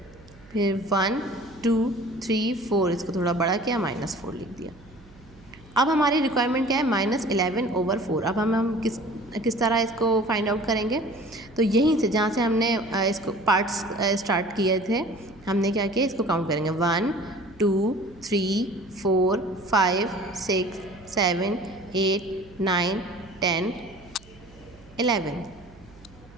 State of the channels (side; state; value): right; noise; hum, 24 dB below the sound